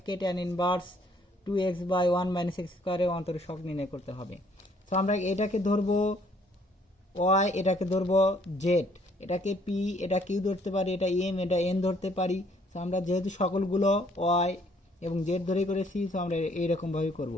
tan inverse 2x/1 minus x স্কোয়ারের অন্তরসহগ নির্ণয় করতে হবে। তো আমরা এটাকে ধরবো y, এটাকে ধরবো z, এটাকে p, এটা q ধরতে পারি, এটা m, এটা n ধরতে পারি। তো আমরা যেহেতু সকলগুলো y এবং z ধরে করেছি, তো আমরা এইরকমভাবে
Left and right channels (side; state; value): both; normal; correlation 0.64